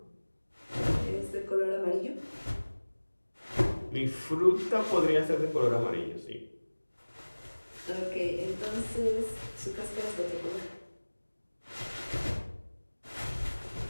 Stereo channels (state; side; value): inverted; both; correlation -1.00